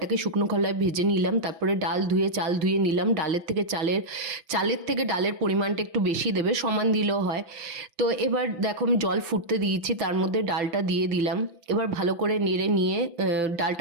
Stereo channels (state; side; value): late; left; 5.9 ms